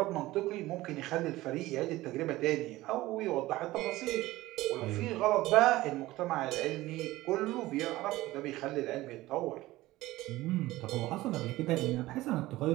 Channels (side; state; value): left; quieter; 17.7 dB